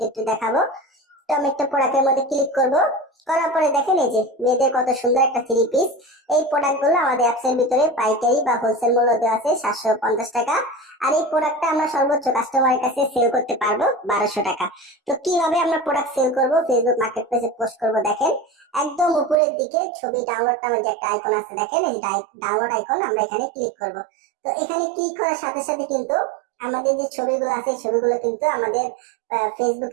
একটু দেখাবো। তো আমি একটা প্রোডাক্টের মধ্যে ক্লিক করব। করার পরে দেখেন এই যে মেয়েদের কত সুন্দর একটা থ্রি পিস। এই প্রোডাক্ট গুলো আমাদের অ্যাপস এর ভিতরে পাইকারি বা হোলসেল মূল্য দেওয়া আছে 750 টাকা। আর এই প্রোডাক্টটা আমরা সর্বোচ্চ কাস্টমারের কাছে সেল করতে পারবো 1200 টাকা। তো কিভাবে আমরা প্রোডাক্ট সেল করব, ফেসবুক মার্কেটপ্লেসে পোস্ট করব, দেখেন একদম উপরের দিকে ছবি ডাউনলোড নামের যে একটা আইকন আছে, দেখেন এই ডাউনলোড আইকন, আমরা এখানে ক্লিক করব। তো এখানে ক্লিক করার সাথে সাথে কিন্তু আমাদের যে ছবিগুলো আছে এই ছবিগুলো কিন্তু আমাদের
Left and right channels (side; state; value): left; drops out; at 19.4 s